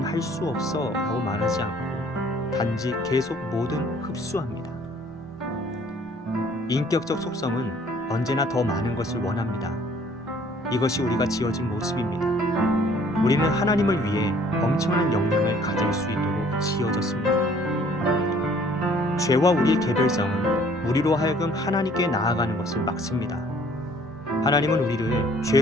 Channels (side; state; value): both; normal; correlation 0.57